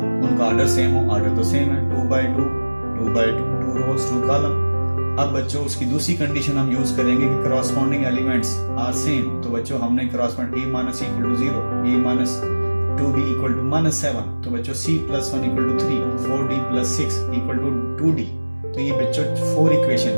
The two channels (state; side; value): inverted; both; correlation -1.00